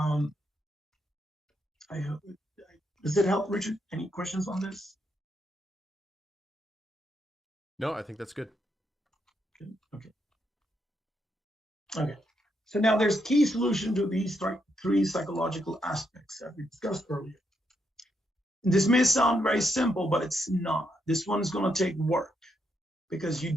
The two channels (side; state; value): both; normal; correlation 0.79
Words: Does it help, Richard? Any questions on this? No, I think that's good. Okay. So now there's key solution to these three psychological aspects that we discussed earlier. And this may sound very simple, but it's not. This one's going to take work, because you